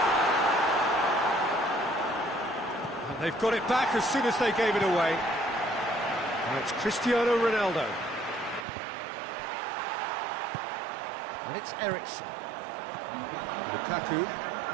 And they've got it back as soon as they gave it away. Now it's Cristiano Ronaldo. And it's Eriksen. Lukaku.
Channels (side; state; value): left; drops out; at 8.7 s